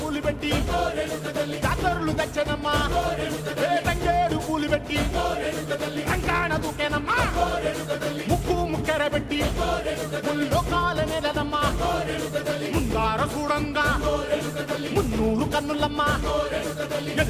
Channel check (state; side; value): identical; both; correlation 1.00